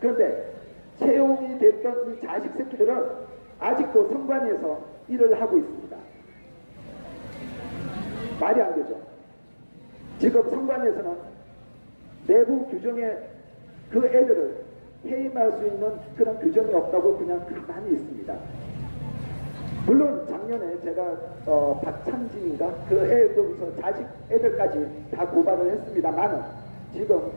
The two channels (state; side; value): inverted; both; correlation -1.00